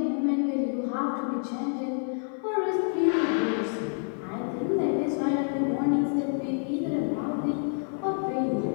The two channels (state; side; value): silent; right; 57 dB below the other